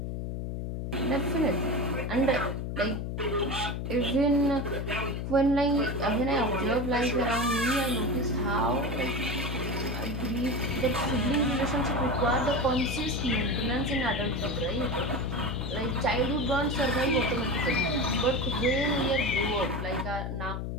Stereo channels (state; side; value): noise; left; hum, 4 dB below the sound